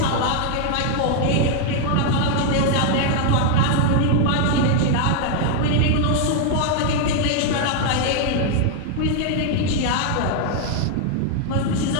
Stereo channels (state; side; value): different; both; correlation 0.00